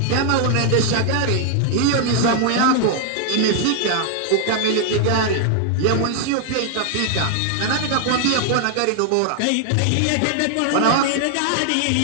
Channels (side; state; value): both; different; correlation 0.00